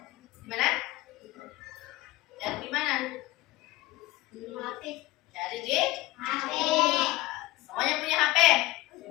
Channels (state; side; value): quieter; right; 18.6 dB